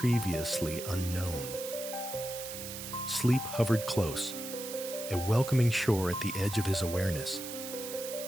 unknown. Sleep hovered close, a welcoming shore at the edge of his awareness.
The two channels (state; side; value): noise; right; hiss, 8 dB below the sound